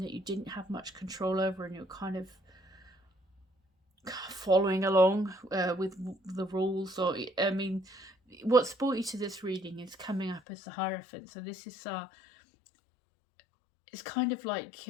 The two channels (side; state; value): right; drops out; at 10.4 s